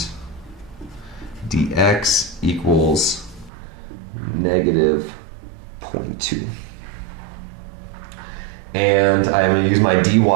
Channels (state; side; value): drops out; left; at 3.5 s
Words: dx equals negative 0.2. And I'm going to use my